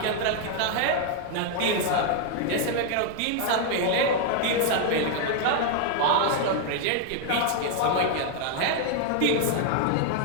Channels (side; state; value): both; different; correlation 0.00